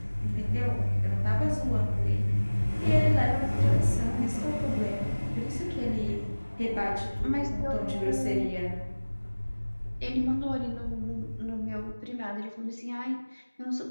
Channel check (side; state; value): both; inverted; correlation -1.00